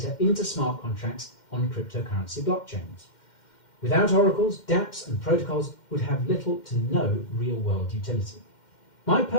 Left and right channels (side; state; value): right; late; 2.1 ms